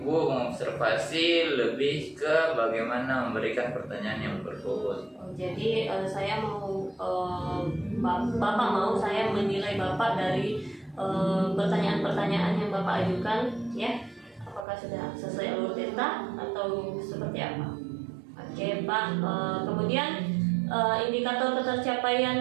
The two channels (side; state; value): left; drops out; at 14.7 s